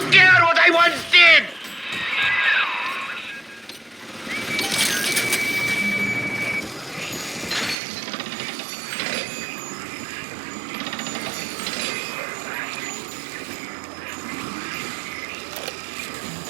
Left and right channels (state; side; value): drops out; left; at 7.8 s